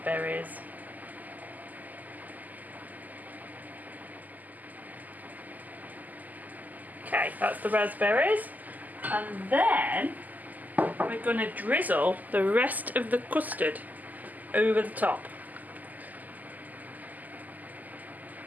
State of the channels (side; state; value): left; late; 0.082 ms